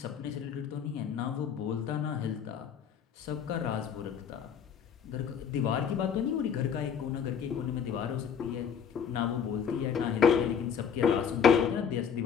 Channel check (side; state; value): right; quieter; 7.5 dB